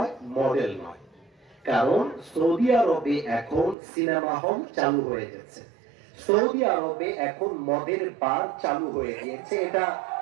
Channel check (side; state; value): left; drops out; at 3.8 s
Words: মডেল নয়। কারণ সৌদি আরবে এখন সিনেমা হল চালু হয়ে গেছে, সৌদি আরবে এখন মদের বার চালু হয়ে গিয়েছে। এটা